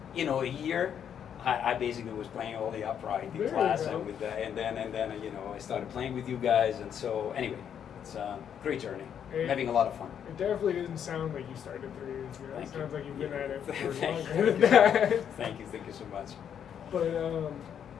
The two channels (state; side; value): quieter; right; 8.6 dB